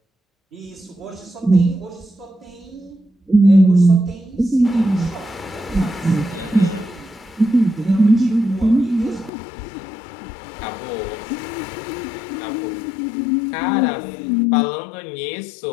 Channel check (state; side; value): drops out; right; at 9.3 s